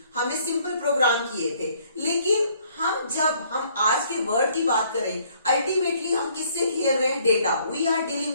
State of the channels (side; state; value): both; inverted; correlation -0.64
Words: हमने सिंपल प्रोग्राम किए थे. लेकिन जब हम आज के वर्ड की बात करें, अल्टीमेटली हम किससे खेल रहे हैं, data. We are